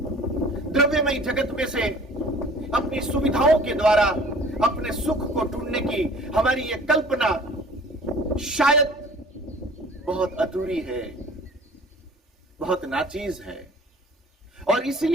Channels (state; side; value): normal; both; correlation 0.48